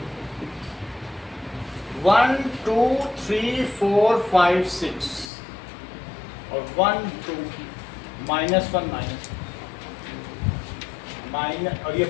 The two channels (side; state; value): right; drops out; at 5.3 s